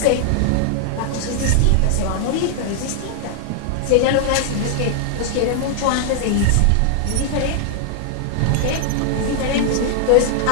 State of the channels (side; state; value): both; different; correlation 0.00